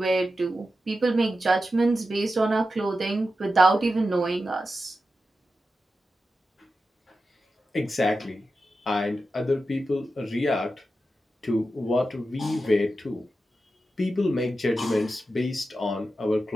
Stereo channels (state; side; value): normal; both; correlation 0.91